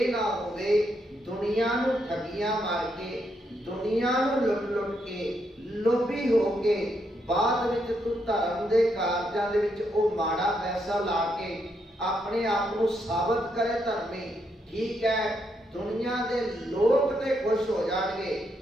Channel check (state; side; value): normal; both; correlation 0.78